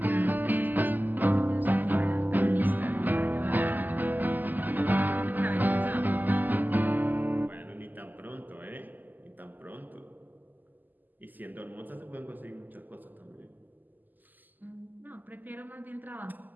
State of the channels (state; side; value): late; left; 0.086 ms